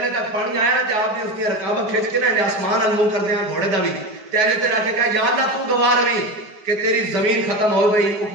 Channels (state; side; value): late; left; 5.1 ms